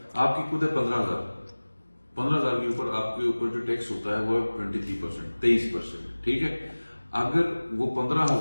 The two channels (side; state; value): both; inverted; correlation -1.00